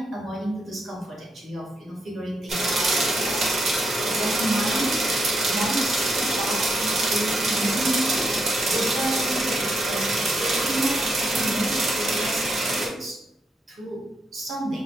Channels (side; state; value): both; normal; correlation 0.79